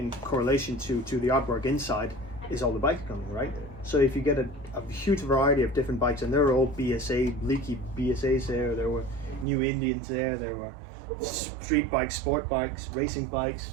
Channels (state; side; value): drops out; left; at 9.5 s